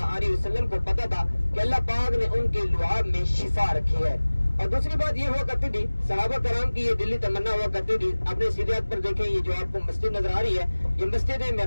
علیہ وسلم کو پتا تھا کہ اللہ پاک نے ان کے لعاب میں شفا رکھی ہے. اور دوسری بات یہ ہوا کرتی تھی, صحابہ کرام کی یہ دلی تمنا ہوا کرتی تھی. اپنے سیدھے ہاتھ پر دیکھیں, یہ جو آپ کو مسجد نظر آ رہی ہے یہ مسجد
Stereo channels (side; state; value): both; inverted; correlation -1.00